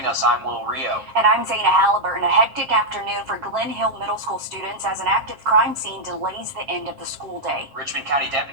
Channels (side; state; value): left; late; 7.5 ms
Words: us. I'm Wrdw. And I'm Zaina Halliburton. A hectic afternoon for Glen Hill Middle School students as an active crime scene delays the end of the school day. Richmond County